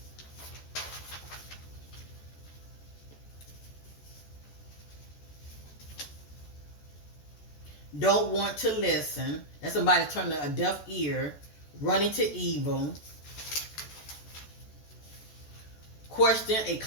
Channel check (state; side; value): late; right; 14 ms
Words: Don't want to listen. That's somebody turning a deaf ear. Running to evil. Question a